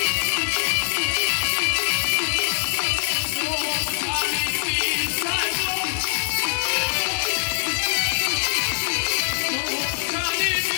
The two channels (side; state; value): right; silent; digital silence